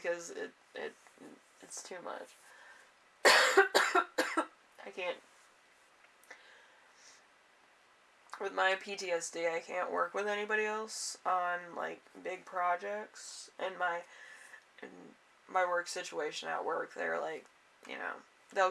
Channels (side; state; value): both; identical; correlation 1.00